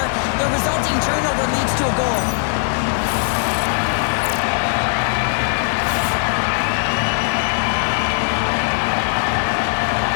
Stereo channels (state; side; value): silent; right; digital silence